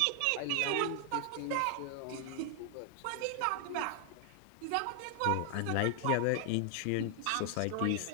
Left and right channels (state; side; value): different; both; correlation 0.00